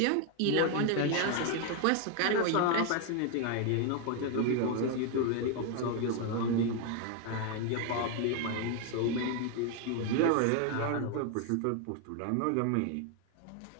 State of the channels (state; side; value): different; both; correlation 0.01